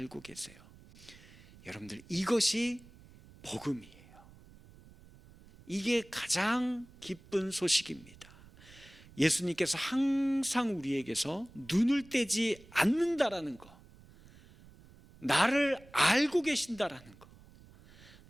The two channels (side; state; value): right; noise; rumble, 23 dB below the sound